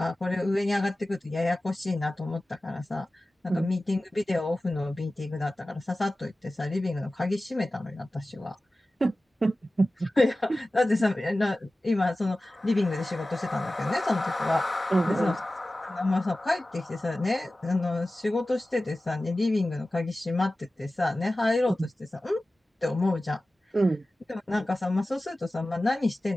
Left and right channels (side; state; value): both; normal; correlation 0.96